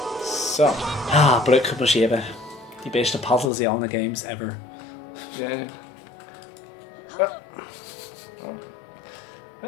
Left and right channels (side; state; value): right; drops out; at 3.5 s